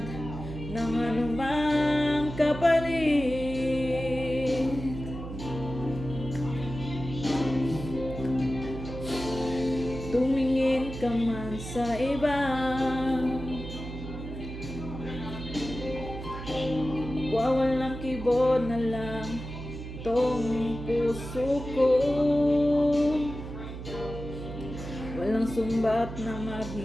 ng anumang kapalit. Tumingin ka man sa iba, wawalang kibo na lang tong puso ko. Walang sumbat na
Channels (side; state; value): right; noise; hum, 9 dB below the sound